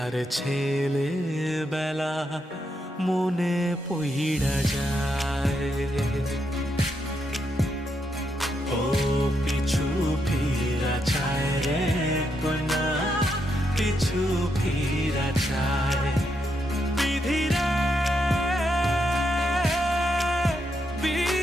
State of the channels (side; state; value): both; normal; correlation 0.81